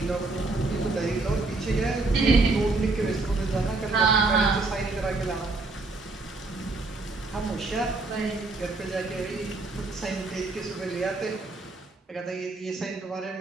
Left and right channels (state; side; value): quieter; left; 3.4 dB